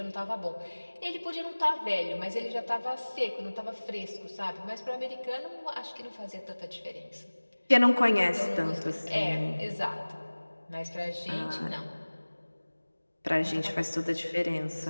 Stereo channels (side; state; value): both; inverted; correlation -1.00